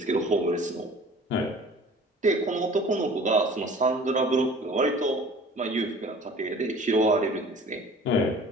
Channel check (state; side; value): normal; both; correlation 0.46